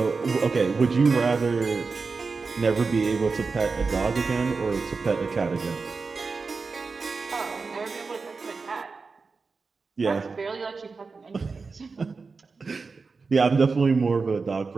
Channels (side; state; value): left; quieter; 4.5 dB